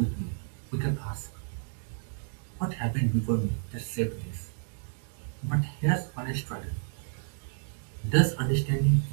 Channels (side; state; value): left; silent; digital silence